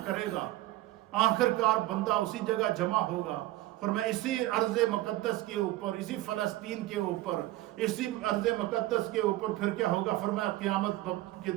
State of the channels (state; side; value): quieter; left; 16.7 dB